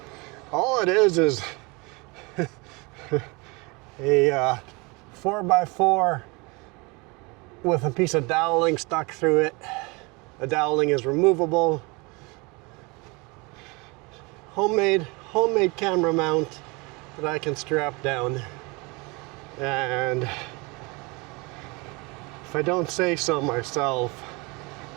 All it is a 4x4 with a piece of doweling stuck through it. The doweling is removable. Homemade camera mount that I can strap down. And if I don't say so myself,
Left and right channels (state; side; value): quieter; left; 27.2 dB